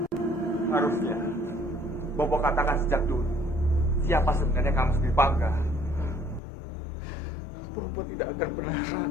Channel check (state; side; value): drops out; right; at 6.4 s